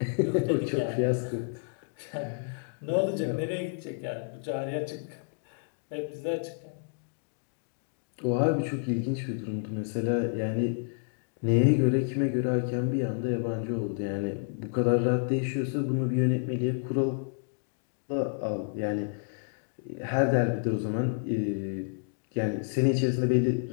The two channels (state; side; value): silent; right; digital silence